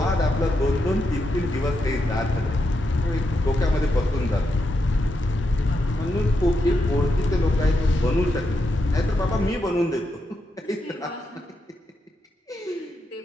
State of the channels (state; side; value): normal; both; correlation 0.84